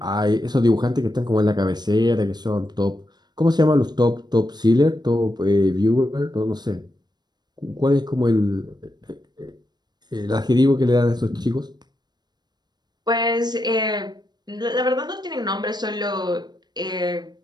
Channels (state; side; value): late; left; 0.20 ms